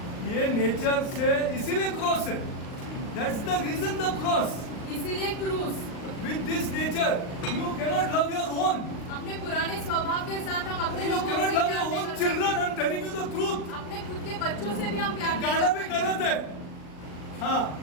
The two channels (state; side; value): late; right; 39 ms